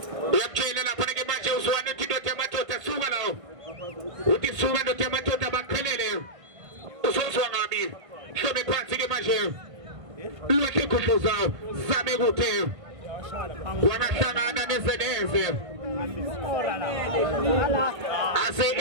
Uyakutshela lapha ke manje uzwane indoda yamadoda suka lawo uthi suka indoda yamadoda baqhelele uzozwa ngabi hlome phansi ke manje lwethe khudluza zame kuthe wangahlangana nezeneze ase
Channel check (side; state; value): left; late; 1.6 ms